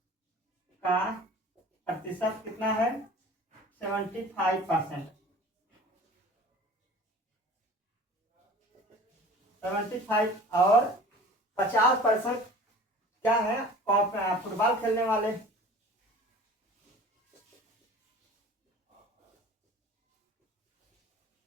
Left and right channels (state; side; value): normal; both; correlation 0.43